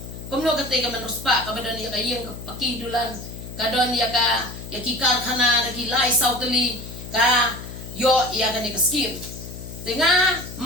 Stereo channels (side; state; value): left; noise; hum, 11 dB below the sound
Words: kumno katay ka manruspa kabadon ya kayeng pakidulan kadon ya ka ya kikar khana daki lai sautali ka yo ya ka ni ka skim tinga